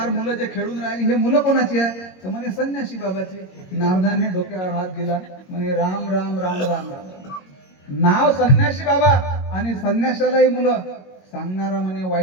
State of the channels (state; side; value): late; right; 22 ms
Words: मुलं जे खेळून राहिली हे मुलं कोणाची आहे, तर म्हणे संन्याशी बाबाची. नारदाने डोक्यावर हात दिला, म्हणे राम राम राम राम राम. नाव संन्याशी बाबा आणि संन्यासालाही मुलं. सांगणारा म्हणे